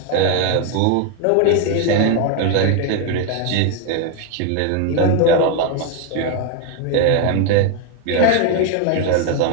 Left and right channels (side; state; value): both; different; correlation 0.01